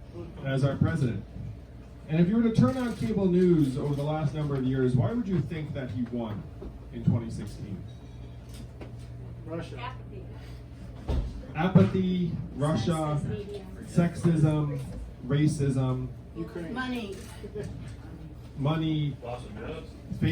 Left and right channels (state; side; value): identical; both; correlation 1.00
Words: as our president. And if you were to turn on cable news over the last number of years, why would you think that he won in 2016? Russia. Apathy, Russia, sexism, racism, Ukraine. money,